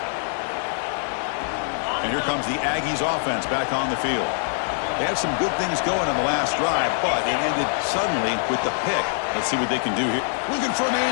And here comes the Aggies offense back on the field. They had some good things going on the last drive, but it ended suddenly with the pick. Let's see what they can do here. Looking for a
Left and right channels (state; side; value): silent; right; 63 dB below the other